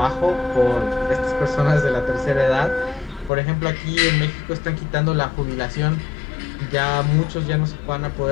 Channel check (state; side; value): drops out; right; at 3.3 s